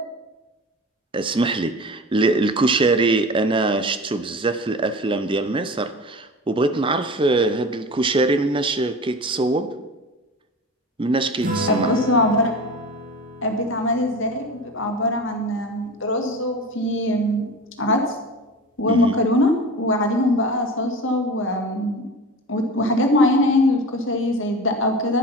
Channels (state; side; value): normal; both; correlation 0.33